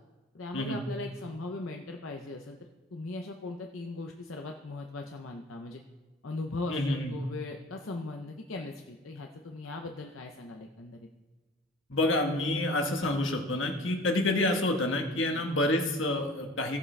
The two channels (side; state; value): both; normal; correlation 0.44